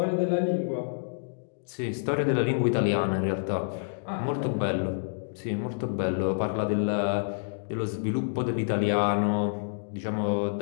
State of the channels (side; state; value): right; silent; digital silence